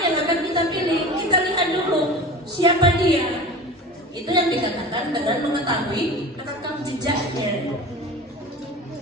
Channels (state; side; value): normal; both; correlation 0.34